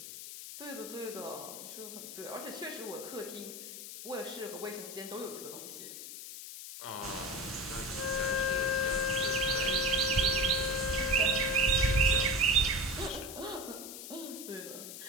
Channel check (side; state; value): left; noise; hiss, 10 dB below the sound